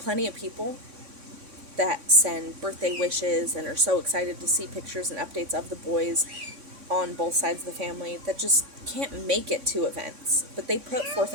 of people that send birthday wishes and are so excited to see pictures and updates of the boys on both sides of the family that just can't make it to events, but they put forth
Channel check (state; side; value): late; left; 3.5 ms